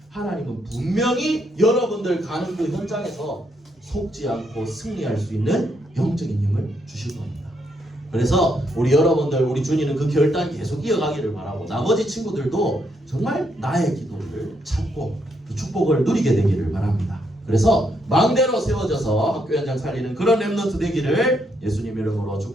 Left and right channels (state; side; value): normal; both; correlation 0.76